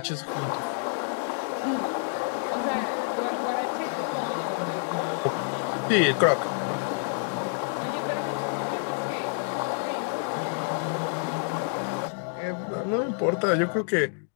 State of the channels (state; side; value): silent; right; digital silence